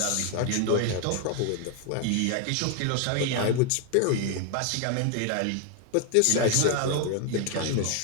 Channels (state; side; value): different; both; correlation 0.00